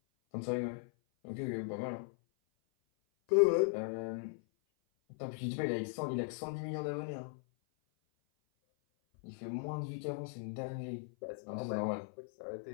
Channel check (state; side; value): silent; right; 52 dB below the other